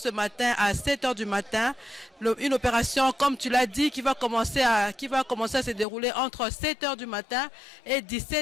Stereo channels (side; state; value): right; drops out; at 5.9 s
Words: matin à 7 h du matin. Une opération, comme tu l'as dit, qui va commencer à se dérouler entre 7 h du matin et